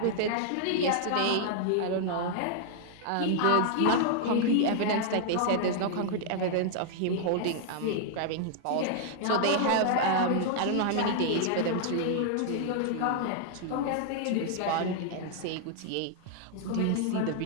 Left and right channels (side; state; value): both; different; correlation 0.00